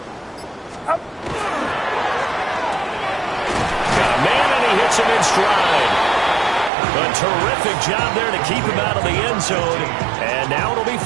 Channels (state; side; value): drops out; left; at 6.7 s